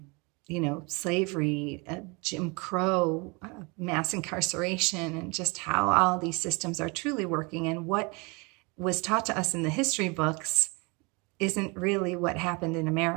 slavery, Jim Crow, mass incarceration, and just how all these systems are truly working. And what was taught to us in the history books isn't really what happened in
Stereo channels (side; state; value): left; quieter; 28.9 dB